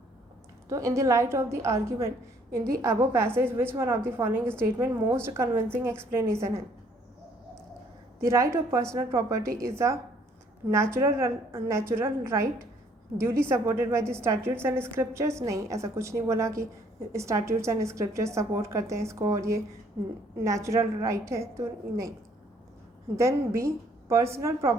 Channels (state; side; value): normal; both; correlation 0.63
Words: तो in the light of the argument in the above passage which one of the following statement most convincing explanation है। The right of personal property is a natural right duly supported by the statutes and scriptures. नहीं, ऐसा कुछ नहीं बोला कि statutes and scriptures support करते हैं इसको और ये नेचुरल राइट है, तो नहीं। Then B, personal